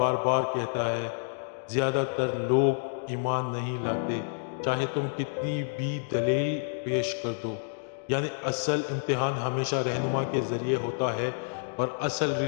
بار کہتا ہے زیادہ تر لوگ ایمان نہیں لاتے چاہے تم کتنی بھی دلیل پیش کر دو، یعنی اصل امتحان ہمیشہ رہنما کے ذریعے ہوتا ہے، اور اصل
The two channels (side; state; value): right; silent; digital silence